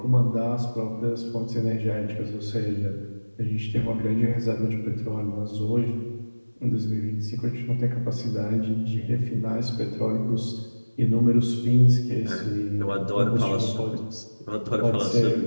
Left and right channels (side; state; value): both; inverted; correlation -1.00